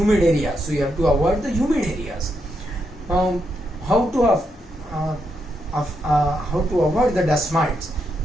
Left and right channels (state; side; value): normal; both; correlation 0.81